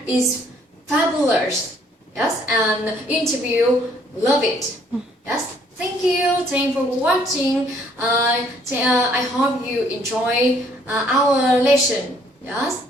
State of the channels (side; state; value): both; normal; correlation 0.63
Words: is fabulous. Yes, and interview love it. Yes, thank you for watching. I hope you enjoy our lesson. Yes,